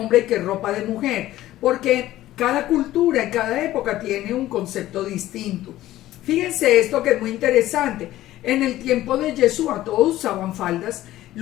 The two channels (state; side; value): quieter; right; 14.8 dB